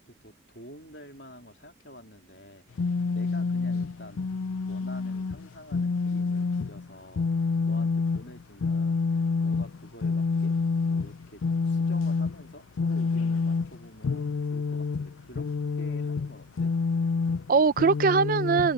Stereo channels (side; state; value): both; normal; correlation 0.46